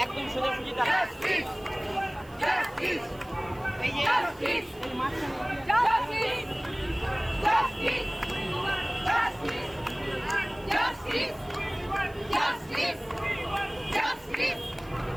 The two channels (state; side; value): noise; right; hiss, 26 dB below the sound